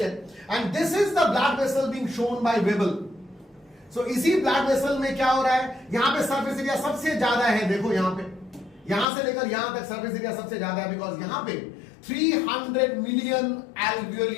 and this is the blood vessel being shown by Weibel. So इसी blood vessel में क्या हो रहा है? यहां पे सरफेस एरिया सबसे ज्यादा है. देखो यहां पे, यहां से लेकर यहां तक सरफेस एरिया सबसे ज्यादा है, बिकॉज यहां पे 300 मिलियन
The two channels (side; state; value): right; drops out; at 9.1 s